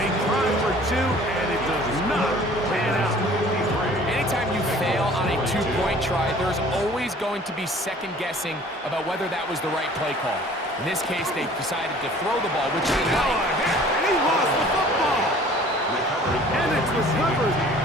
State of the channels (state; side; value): normal; both; correlation 0.50